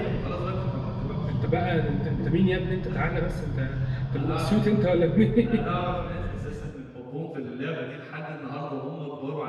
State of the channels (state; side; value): identical; both; correlation 1.00